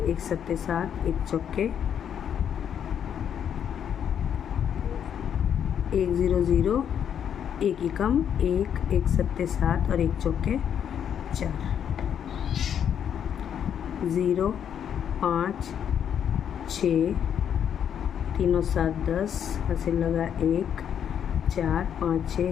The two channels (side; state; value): right; quieter; 8.7 dB